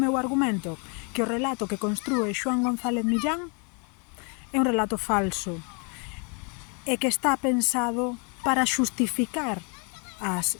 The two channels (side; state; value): right; quieter; 36.1 dB